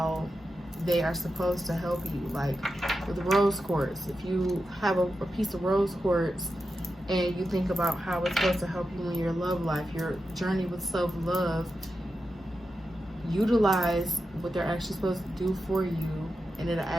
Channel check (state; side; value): normal; both; correlation 0.90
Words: they are supposed to help you. Like with rose quartz, if you have a piece of rose quartz and you think about how it's supposed to help you in your love life, your journey with self-love, utilize what they're actually supposed to do for you, and it'll